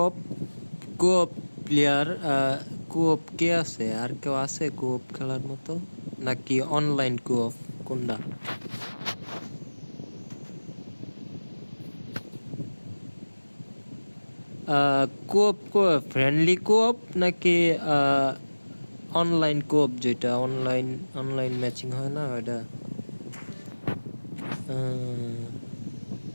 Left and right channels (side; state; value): both; inverted; correlation -1.00